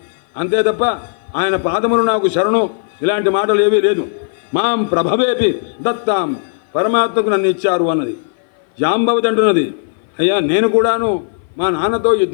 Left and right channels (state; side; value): silent; right; 57 dB below the other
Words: అంతే తప్ప ఆయన పాదములు నాకు శరణు ఇలాంటి మాటలు ఏవీ లేదు. మాం ప్రభవేపి దత్తాం, పరమాత్మకు నన్ను ఇచ్చారు అన్నది. జాంబవతి అంటున్నది, అయ్యా నేను కూడాను మా నాన్నతో